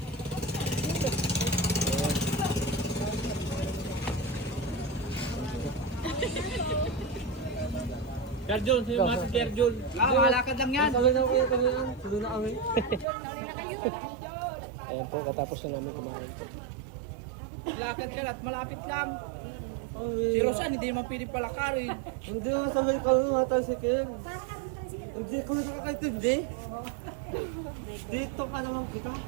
Jarjol, sino mga si Jarjol? Malakad lang yan. Tuloy na kami. Ayan po, katapos na namin kumain po. Lakad ka at malapit lang. Si Rosan, hindi naman pili palakarin. Hindi nga sabay ko nga tayo si Ken. Hindi ko nakakaintindi. Dito ka naman kita.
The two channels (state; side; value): drops out; left; at 13.1 s